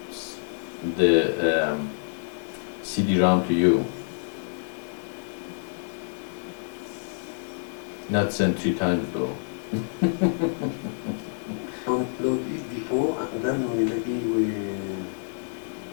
the CD-ROM to you. Not send 3 times though. Download it before, and then maybe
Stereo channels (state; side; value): silent; right; digital silence